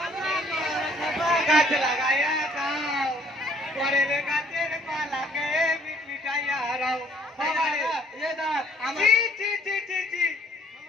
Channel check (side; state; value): both; normal; correlation 0.61